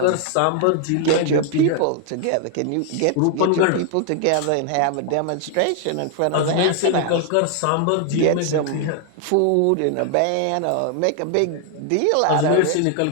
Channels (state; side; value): different; both; correlation 0.00